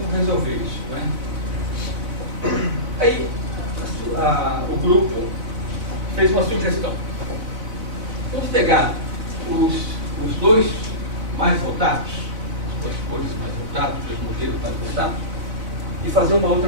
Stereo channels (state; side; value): late; left; 4.0 ms